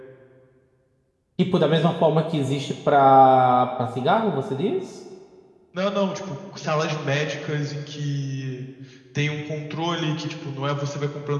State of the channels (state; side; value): identical; both; correlation 1.00